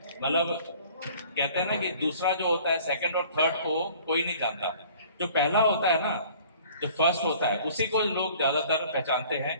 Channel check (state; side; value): inverted; both; correlation -0.51